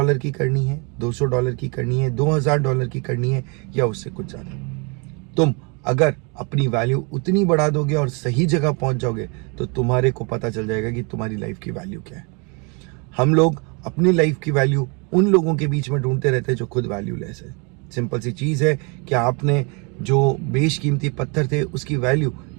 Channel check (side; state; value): left; quieter; 32.5 dB